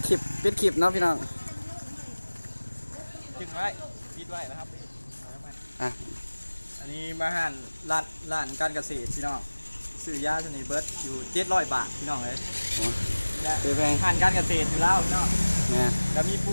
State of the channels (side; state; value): both; inverted; correlation -1.00